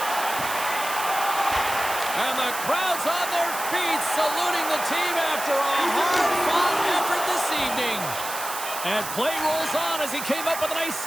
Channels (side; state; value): right; noise; hiss, 7 dB below the sound